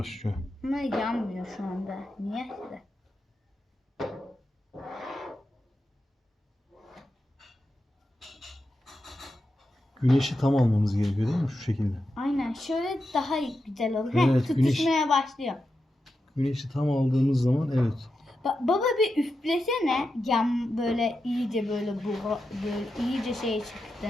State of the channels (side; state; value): both; normal; correlation 0.88